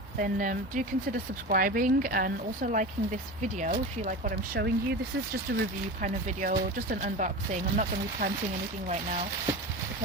then do consider subscribing and also liking this video if you like what I'm showing you. This is just a review kind of video, just an unboxing. I'm not going to be planting anything right now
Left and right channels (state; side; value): normal; both; correlation 0.28